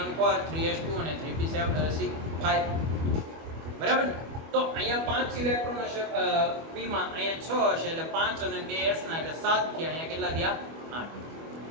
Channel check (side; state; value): left; late; 25 ms